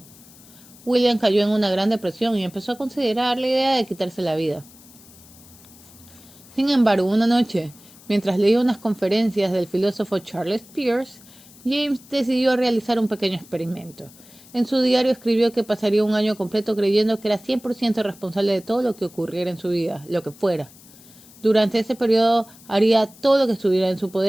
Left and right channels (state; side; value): noise; left; hiss, 23 dB below the sound